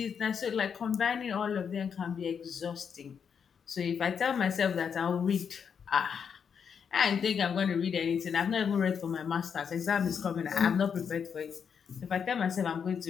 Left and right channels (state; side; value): quieter; right; 7.0 dB